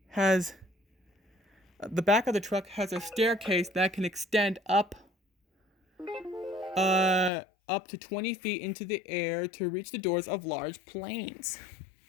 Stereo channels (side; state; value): right; drops out; at 7.3 s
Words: staircase that can extend up to 20 feet into the air to reach the doors of large planes.